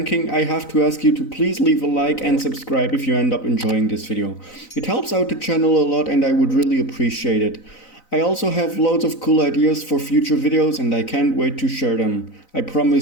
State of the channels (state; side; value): late; right; 4.0 ms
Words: I have to ask you to please leave a like and subscribe if you end up enjoying this video. It helps out the channel a lot and I would really appreciate it. I also have loads of cool ideas for future videos and I can't wait to share them. I